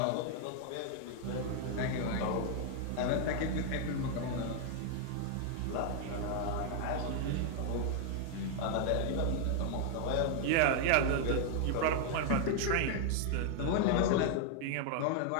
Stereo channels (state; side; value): different; both; correlation 0.00